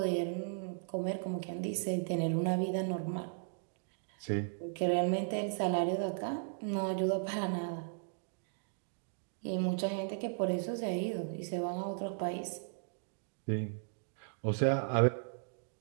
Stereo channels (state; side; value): silent; left; digital silence